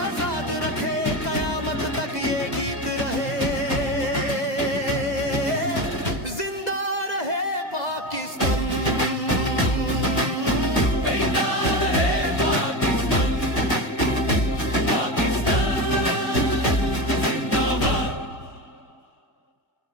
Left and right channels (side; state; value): right; late; 2.0 ms